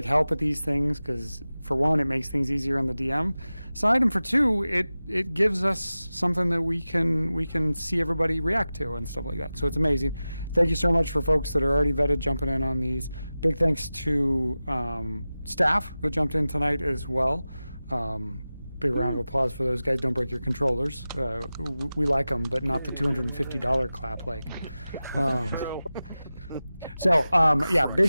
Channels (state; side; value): inverted; both; correlation -0.95